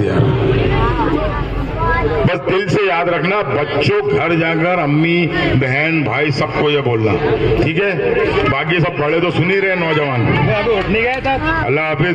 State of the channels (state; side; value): identical; both; correlation 1.00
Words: बस दिल से याद रखना। बच्चों घर जाकर अम्मी बहन भाई सबको ये बोलना, ठीक है? बाकी सब बड़े तो सुन ही रहे, नौजवान। अल्लाह हाफिज,